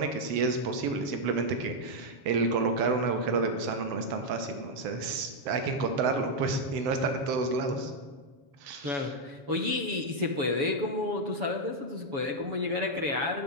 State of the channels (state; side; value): late; left; 7.1 ms